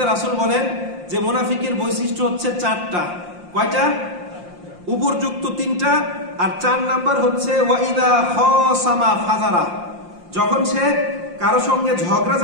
রাসূল বলেন যে মুনাফিকের বৈশিষ্ট্য হচ্ছে 4টা। কয়টা? উপরযুক্ত 3টা, আর 4 নাম্বার হচ্ছে ওয়া ইযা খাসামা ফাজারা, যখন সে কারো সঙ্গে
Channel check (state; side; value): late; left; 5.7 ms